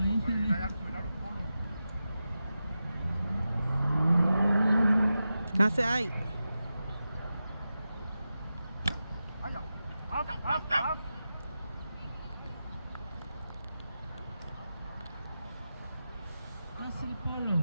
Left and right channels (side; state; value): both; inverted; correlation -0.92